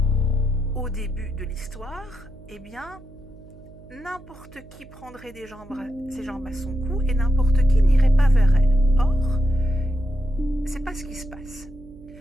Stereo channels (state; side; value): noise; right; hum, 21 dB below the sound